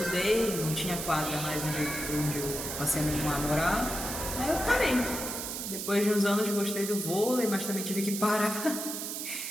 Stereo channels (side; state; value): right; noise; hiss, 5 dB below the sound